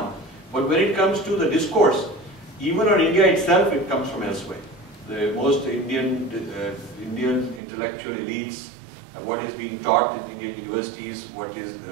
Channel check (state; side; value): drops out; left; at 7.6 s